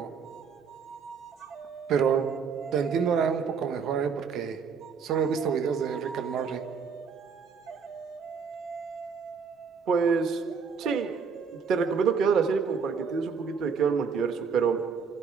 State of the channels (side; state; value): left; quieter; 5.9 dB